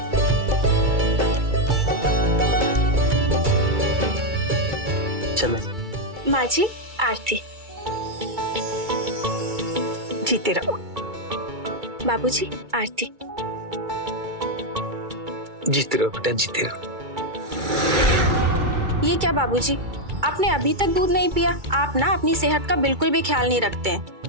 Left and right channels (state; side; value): late; left; 2.3 ms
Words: चलो माँ जी, आरती। जीते रहो। बाबूजी, आरती। जीते रहो बेटा, जीते रहो। ये क्या बाबूजी, आपने अभी तक दूध नहीं पिया? आप ना अपनी सेहत का बिल्कुल भी ख्याल नहीं रखते हैं।